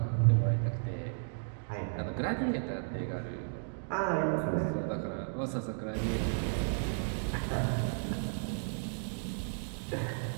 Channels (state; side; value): silent; left; digital silence